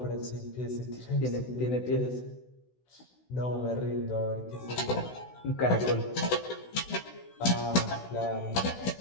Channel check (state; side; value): late; right; 16 ms